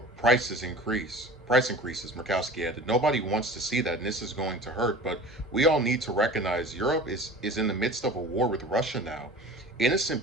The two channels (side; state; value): both; normal; correlation 0.39